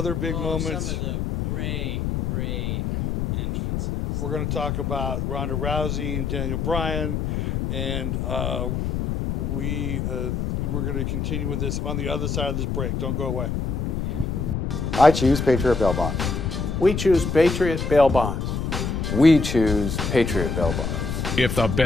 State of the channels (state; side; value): noise; left; rumble, 1 dB below the sound